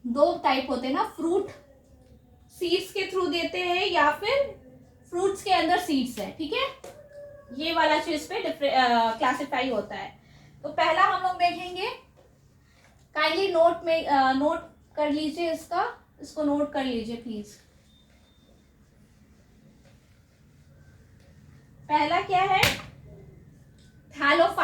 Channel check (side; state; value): both; identical; correlation 1.00